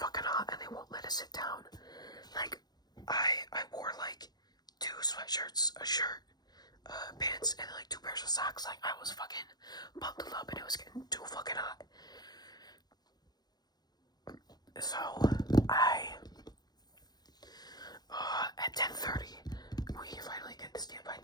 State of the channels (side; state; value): right; late; 0.19 ms